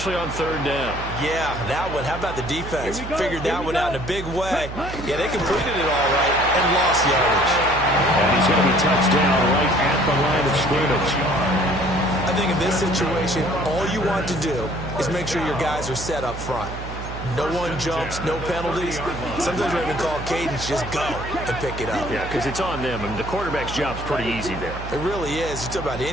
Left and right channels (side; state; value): right; noise; hum, 9 dB below the sound